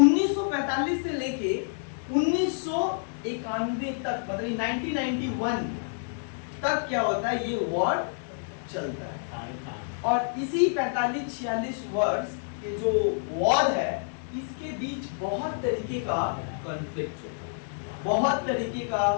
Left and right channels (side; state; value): right; silent; digital silence